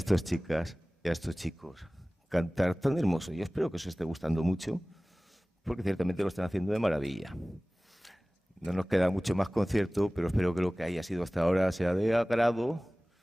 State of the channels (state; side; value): normal; both; correlation 0.98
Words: chicas y a estos chicos cantar tan hermoso. Yo espero que os esté gustando mucho, porque ciertamente lo están haciendo de maravilla. No nos queda mucho más concierto, pero espero que lo que haya sido hasta ahora sea de agrado